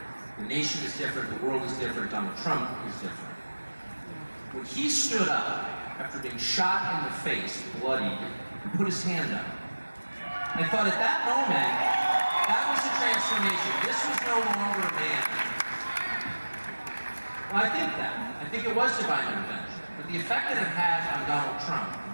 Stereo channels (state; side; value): inverted; both; correlation -1.00